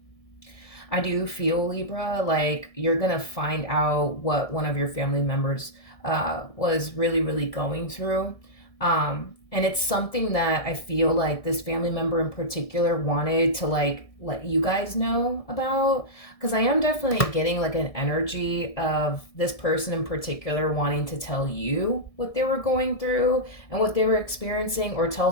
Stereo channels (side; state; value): right; late; 1.6 ms